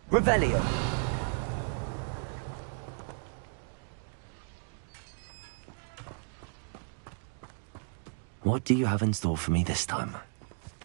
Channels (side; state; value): left; silent; 55 dB below the other